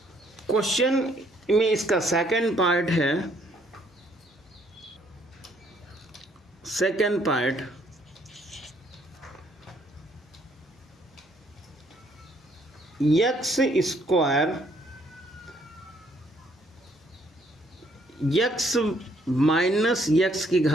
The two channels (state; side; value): normal; both; correlation 0.67